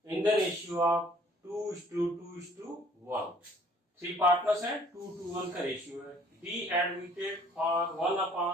in the ratio of 2:2:1। 3 partners हैं, 2:1 का रेशियो है। B admitted for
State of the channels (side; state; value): both; normal; correlation 0.57